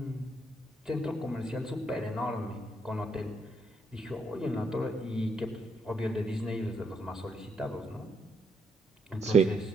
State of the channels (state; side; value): normal; both; correlation 0.75